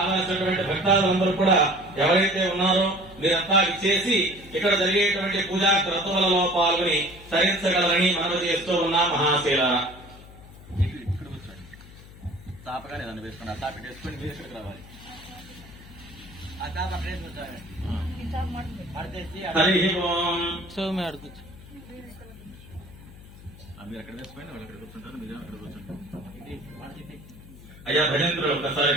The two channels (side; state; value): left; noise; hum, 19 dB below the sound